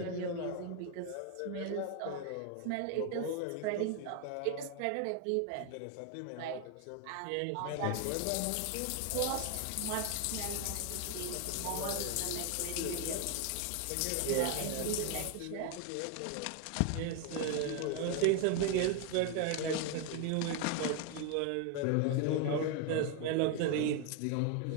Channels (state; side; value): different; both; correlation 0.01